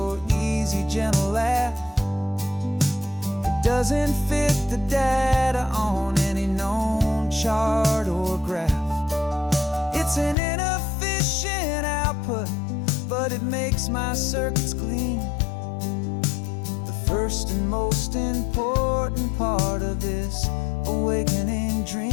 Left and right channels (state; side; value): drops out; right; at 10.4 s